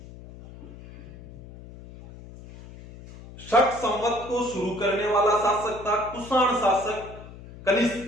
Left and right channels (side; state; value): left; noise; hum, 17 dB below the sound